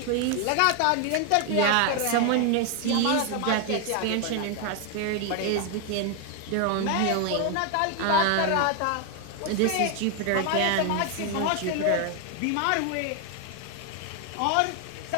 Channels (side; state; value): both; different; correlation 0.01